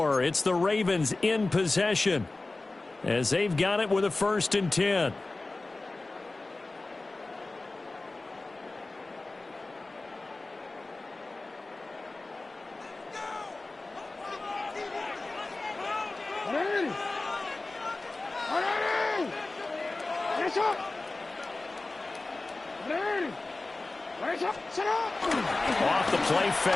It's the Ravens in possession as they've got it with a 1st and 10. Off the play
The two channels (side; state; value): right; quieter; 3.2 dB